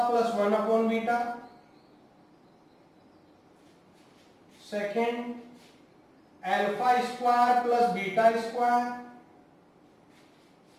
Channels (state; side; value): identical; both; correlation 1.00